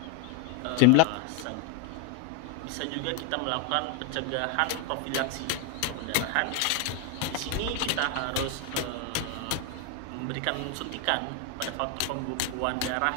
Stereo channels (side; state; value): both; different; correlation 0.01